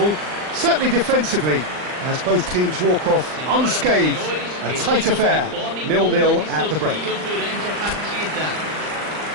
certainly defensively, as both teams walk off unscathed. A tight affair, 0-0 at the break.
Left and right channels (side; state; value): left; late; 39 ms